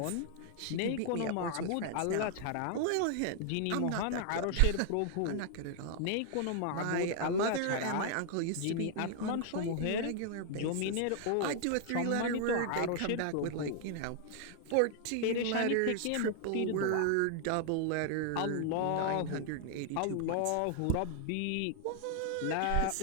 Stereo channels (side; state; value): both; different; correlation 0.00